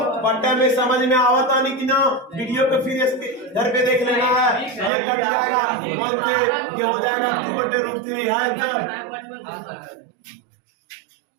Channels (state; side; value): drops out; left; at 4.9 s